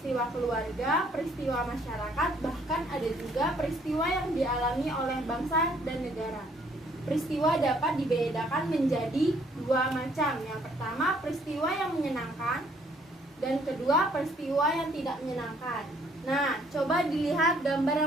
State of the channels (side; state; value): both; normal; correlation 0.64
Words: keluarga, peristiwa masyarakat, bahkan ada juga peristiwa yang dialami oleh bangsa dan negara. Peristiwa dapat dibedakan menjadi dua macam. Yang pertama, peristiwa yang menyenangkan, dan kedua, peristiwa yang tidak menyenangkan. Nah, coba dilihat gambar